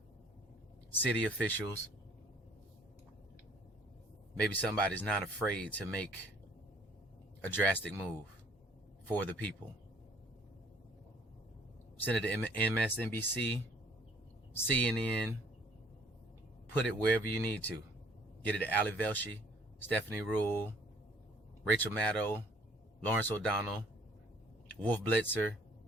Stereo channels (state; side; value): normal; both; correlation 0.59